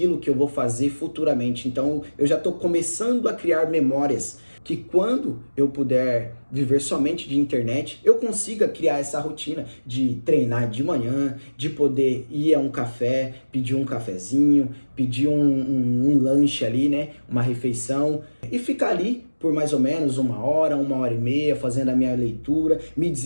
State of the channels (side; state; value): both; inverted; correlation -1.00